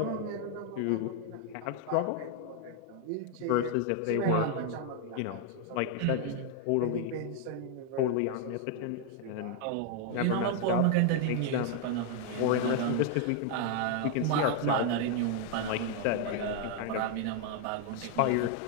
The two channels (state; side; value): different; both; correlation 0.00